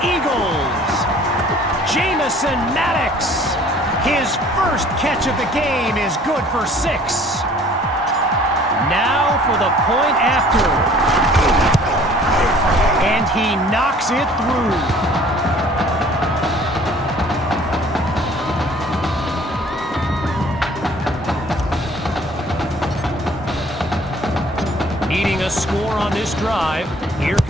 Eagles. Jamison Maddox. His first catch of the game is good for 6. Now for the point after. And he knocks it through. Needing a score on this drive, here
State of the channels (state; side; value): normal; both; correlation 0.53